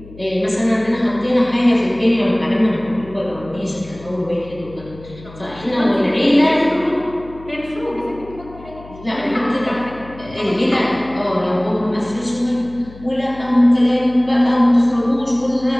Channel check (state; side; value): noise; left; hum, 19 dB below the sound